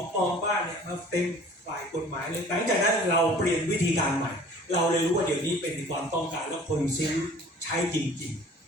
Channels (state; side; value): normal; both; correlation 0.49